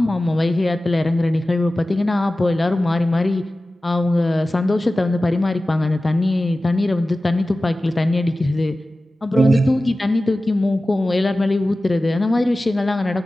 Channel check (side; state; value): both; normal; correlation 0.96